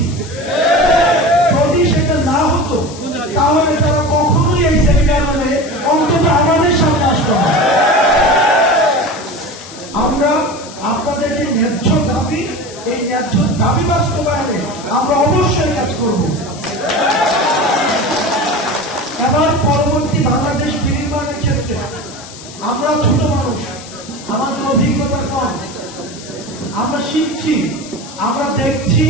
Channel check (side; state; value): left; noise; hiss, 16 dB below the sound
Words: যদি সেটা না হতো তাহলে তারা কখনোই এই সেমিনার হলে অন্তত আমাদের সামনে আসতো না। আমরা আপনাদের যে ন্যায্য দাবি, এই ন্যায্য দাবি বাস্তবায়নে আমরা অবশ্যই কাজ করব। এবার পরবর্তী বাংলাদেশ বিনির্মাণের ক্ষেত্রে আমরা ছোট মানুষ, আমাদের অভিজ্ঞতা কম, আমরা শিখছি, আমরা দেখছি,